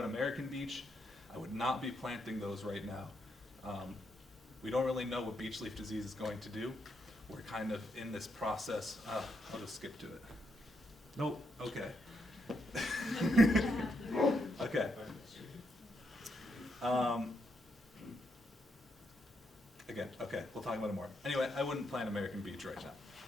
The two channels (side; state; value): both; normal; correlation 0.80